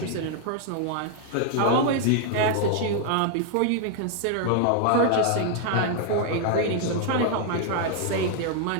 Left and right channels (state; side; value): different; both; correlation 0.00